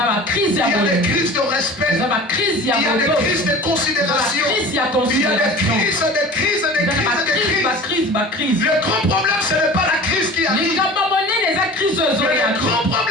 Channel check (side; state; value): both; normal; correlation 0.39